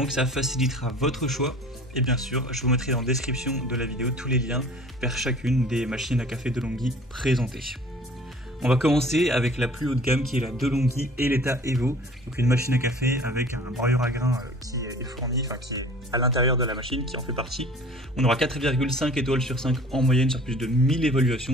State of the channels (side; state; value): both; normal; correlation 0.47